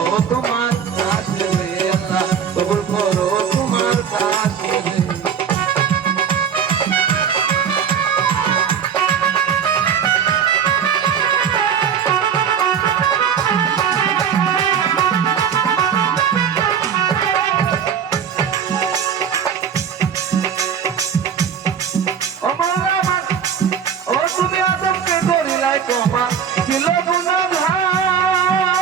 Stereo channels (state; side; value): quieter; left; 7.7 dB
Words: তোমার তাসিরে আল্লাহ কবুল করো তোমার তাসিরে তোমার ছিল গুণাধার